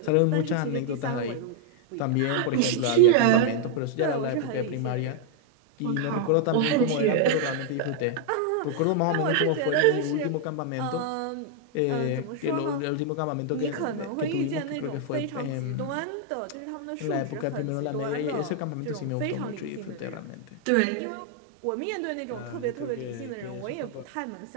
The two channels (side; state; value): both; different; correlation 0.00